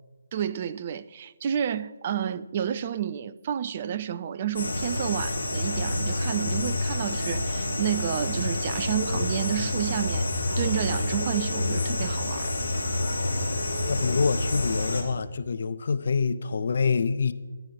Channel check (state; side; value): inverted; both; correlation -0.75